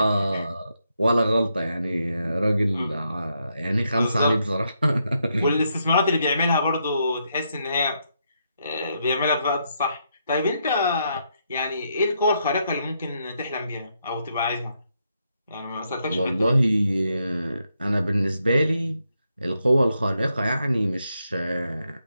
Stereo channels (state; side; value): inverted; both; correlation -0.79